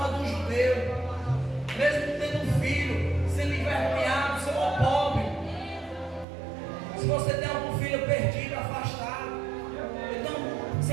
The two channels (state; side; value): drops out; left; at 6.2 s